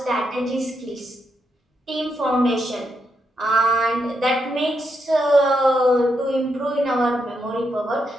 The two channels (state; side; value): normal; both; correlation 0.81